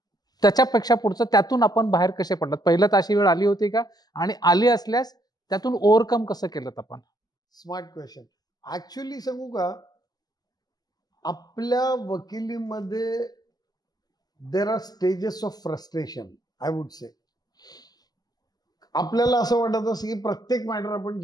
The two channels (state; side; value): late; right; 0.19 ms